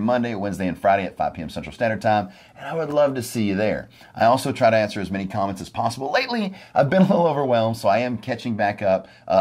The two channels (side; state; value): both; identical; correlation 1.00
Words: Wednesday, and Friday at 5 p.m. Central Standard Time, and I would love to see you there. I also try to answer as many comments as possible. Lately, I've been a little overwhelmed, so I am catching back up